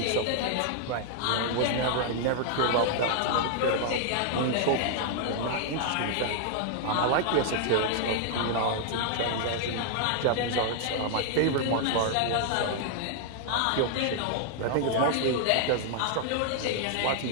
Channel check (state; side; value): different; both; correlation 0.00